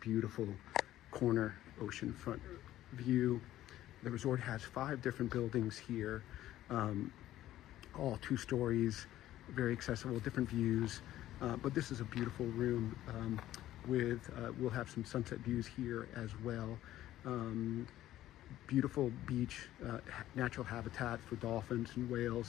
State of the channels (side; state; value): right; quieter; 13.8 dB